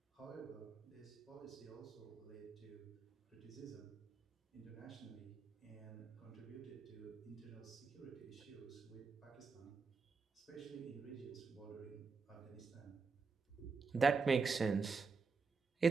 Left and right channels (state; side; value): quieter; left; 4.8 dB